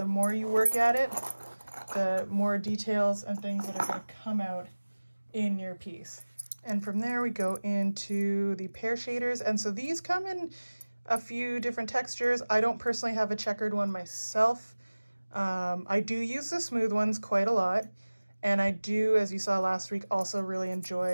more you work at it, the more details and things that are going to come out in your piece. And from there we go into the Pear Shaders. And so these come in a few different textures. I don't personally have a checkered one myself. I do use the smooth ones quite a lot. And I do, as you saw last week, also really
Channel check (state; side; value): inverted; both; correlation -1.00